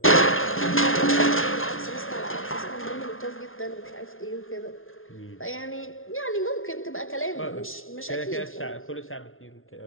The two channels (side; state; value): right; late; 0.60 ms